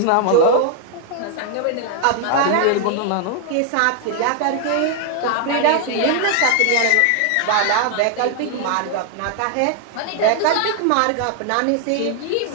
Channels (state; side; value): different; both; correlation 0.00